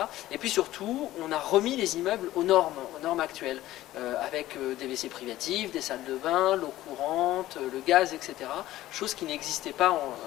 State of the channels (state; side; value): quieter; right; 15.2 dB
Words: Et puis surtout, on a remis les immeubles aux normes actuelles, avec des WC privatifs, des salles de bain, l'eau courante, le gaz, etc. Chose qui n'existait pas